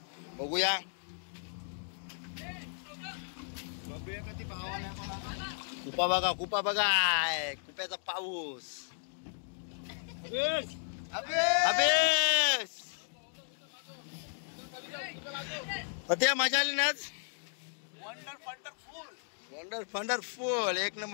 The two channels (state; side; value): silent; right; digital silence